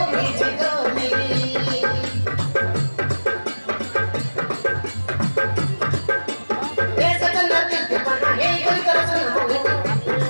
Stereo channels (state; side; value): inverted; both; correlation -1.00